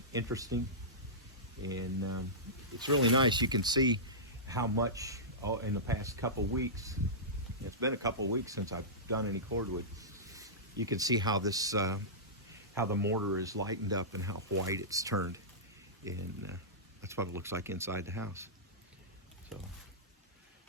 interesting. And it's really nice. You can see how much in the past couple weeks, it's been a couple weeks since I've done any cordwood. You can see how this, how the mortar is lightened up and how white it's turned. And that's what it looks like inside the house. So,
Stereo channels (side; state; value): both; normal; correlation -0.17